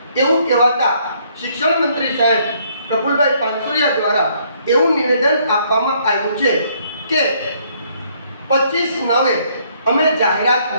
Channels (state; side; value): inverted; both; correlation -0.67